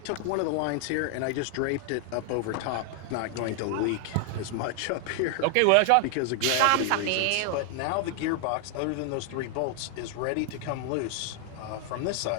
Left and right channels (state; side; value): different; both; correlation 0.00